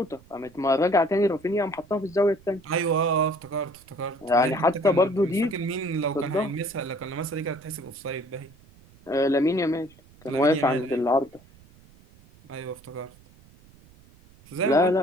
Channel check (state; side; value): noise; right; rumble, 26 dB below the sound